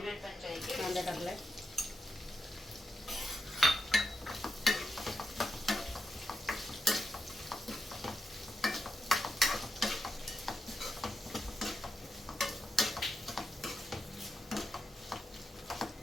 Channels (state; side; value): normal; both; correlation 0.86